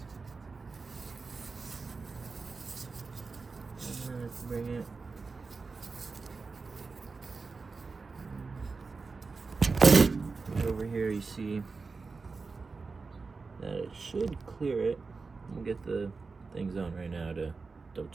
And then bring it. Over here you see that it should clear it. We'll get the things on right now to double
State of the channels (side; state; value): left; quieter; 4.3 dB